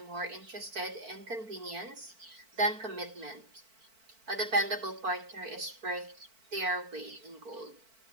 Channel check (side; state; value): left; late; 4.5 ms